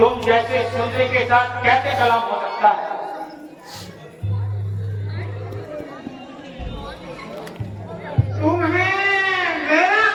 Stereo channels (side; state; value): both; identical; correlation 1.00